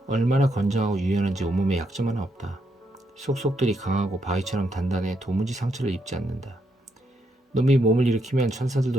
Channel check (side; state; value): both; normal; correlation 0.78